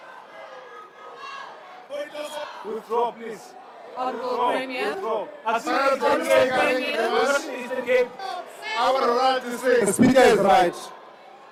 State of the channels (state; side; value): identical; both; correlation 1.00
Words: Withdraw, please. Honourable Premier. Withdraw. Our right to say the Speaker is right.